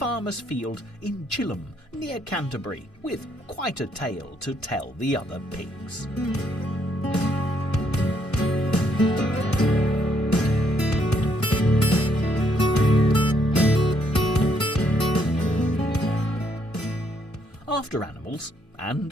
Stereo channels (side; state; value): both; normal; correlation 0.72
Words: field in Chilham, near Canterbury, with quite a tale to tell the other pigs. After Animals, and